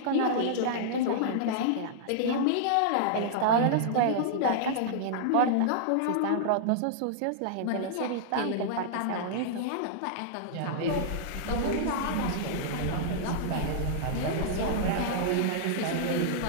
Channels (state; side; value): different; both; correlation -0.01